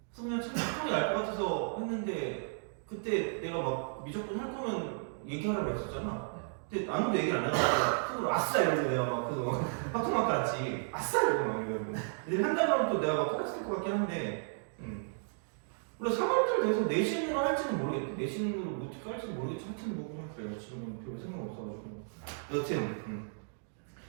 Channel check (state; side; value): silent; left; digital silence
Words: 그래서 그냥 참 합통이 날 것 같아서 했는데 그때 내가 막 미적분 할 거면 얘기하라고 했었잖아. 근데 아무도 얘기를 안 해가지고 속으로 아싸 이러고 내가 막 그거 합통만 깔았지. 아싸 이러고 막 이러고. 근데 한다면 또 내가 막 깔았을 것 같긴 한데. 그래서 3월달 돼서 내신으로 할지는 모르겠대. 내신으로 어떻게 할지는 모르겠지. 하여튼 뭐 그냥 그래요. 지금은 별 생각 없어가지고. 여튼